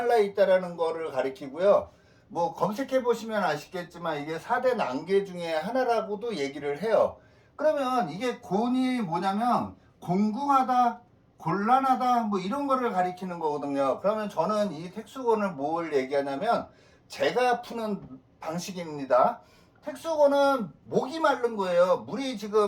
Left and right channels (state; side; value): identical; both; correlation 1.00